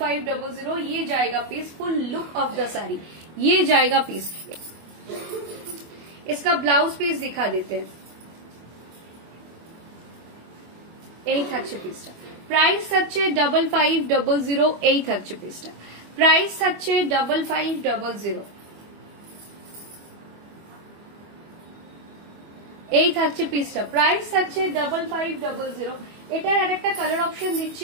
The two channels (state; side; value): late; left; 25 ms